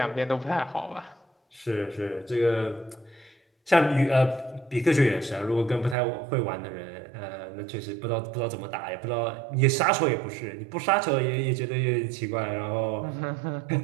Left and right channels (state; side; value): drops out; left; at 6.0 s